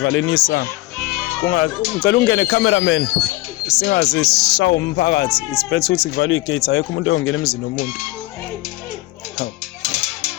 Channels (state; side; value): quieter; right; 19.6 dB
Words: isango. Ngicela ungene cameraman. Singaze sishawa umphakathi. It's better ukuthi kuvalwe igate, ayekho umuntu oyongena emzini womuntu.